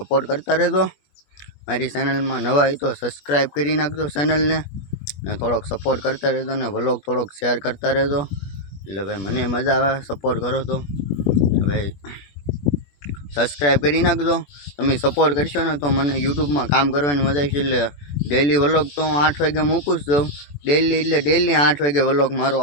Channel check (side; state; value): right; late; 21 ms